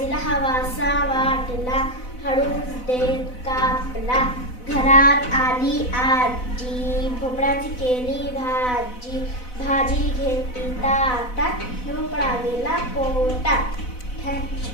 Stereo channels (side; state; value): right; late; 4.0 ms